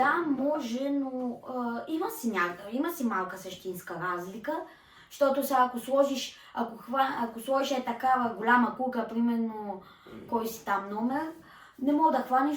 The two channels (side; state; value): both; identical; correlation 1.00